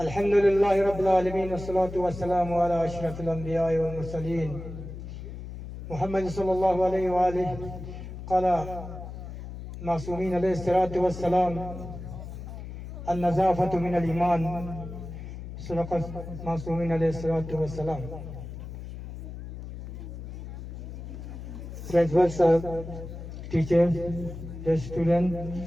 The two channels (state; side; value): noise; left; hum, 10 dB below the sound